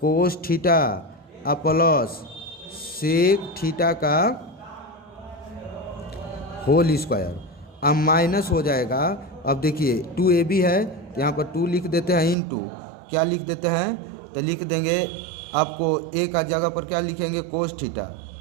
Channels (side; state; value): left; drops out; at 12.4 s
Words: थीटा और प्लस सेक थीटा का होल स्क्वायर, अब माइनस हो जाएगा। अब देखिए 2ab है, तो यहाँ पर 2 लिख देते हैं, इनटू क्या लिख देते हैं? तो लिख देंगे आपको ए का जगह पर क्या लिखेंगे? कोस